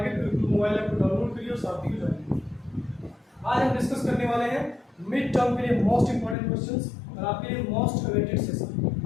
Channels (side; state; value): right; drops out; at 6.4 s